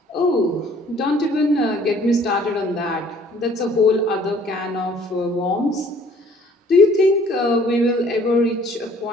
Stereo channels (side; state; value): both; normal; correlation 0.56